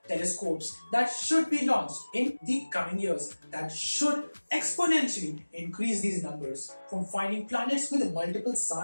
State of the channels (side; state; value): both; inverted; correlation -1.00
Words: telescopes that should be launched in the coming years that should exponentially increase these numbers. From finding planets with multiple